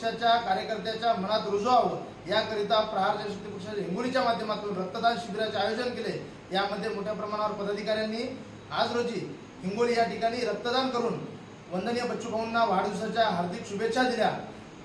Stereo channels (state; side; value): identical; both; correlation 1.00